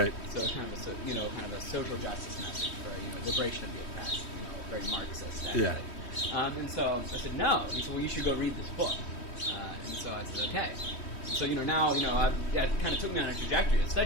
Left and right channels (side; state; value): right; late; 3.1 ms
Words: So kind of a social justice message for, liberation of the oppressed, very Marxist. Yeah. And so I said, no. He said, well, you should go read this book. So I said, okay. So, now, it kind of took me on a trajectory of